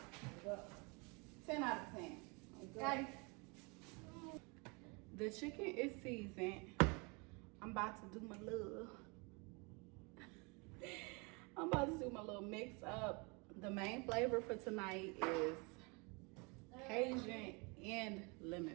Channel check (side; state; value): left; quieter; 30.3 dB